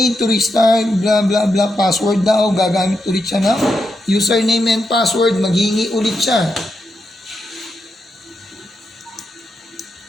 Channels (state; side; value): normal; both; correlation 0.84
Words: to restart, blah, blah, blah, password daw. Gagamit ulit siya ng username and password. Maghingi ulit siya.